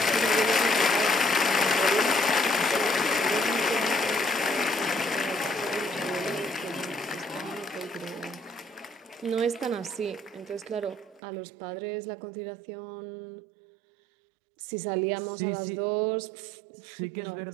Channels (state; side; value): drops out; left; at 11.2 s